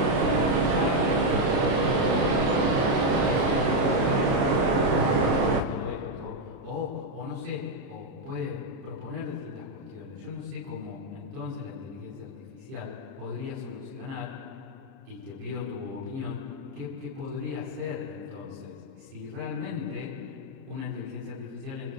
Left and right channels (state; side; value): late; left; 29 ms